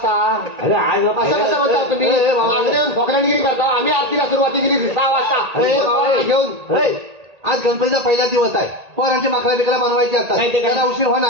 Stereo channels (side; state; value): left; late; 1.8 ms